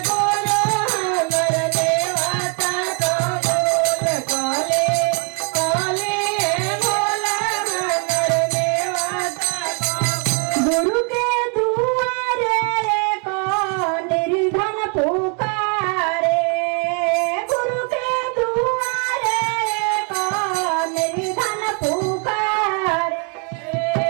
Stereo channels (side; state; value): left; quieter; 37.8 dB